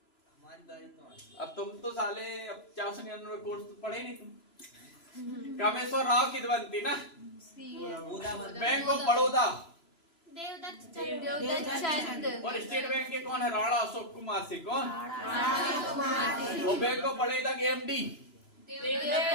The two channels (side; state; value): right; late; 3.0 ms